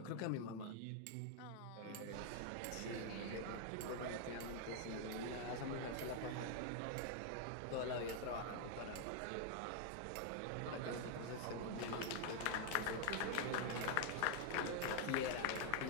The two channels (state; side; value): different; both; correlation 0.00